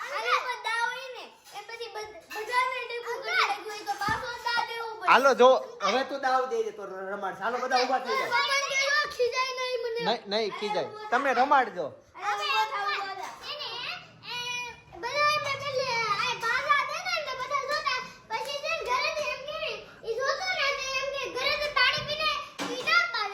હાલો જો હવે તું દાવ દેજે તો રમાડ. હાલો બધા ઊભા થઈ જાવ. નહીં ખીજાય, તમે રમાડજો.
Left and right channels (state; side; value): identical; both; correlation 1.00